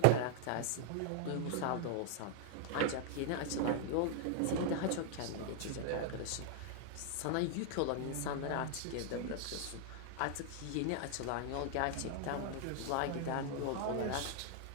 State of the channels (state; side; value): different; both; correlation 0.00